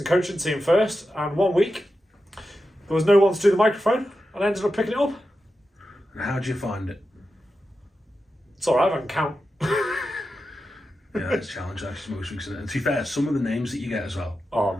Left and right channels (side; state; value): both; normal; correlation 0.90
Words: coaching team first, and 1 week there was no one to do the microphone, and I ended up picking it up. And how did you find it? It's alright, I can count. Yeah, it's a challenge actually most weeks. And to be fair, some of the names that you get as well. Oh,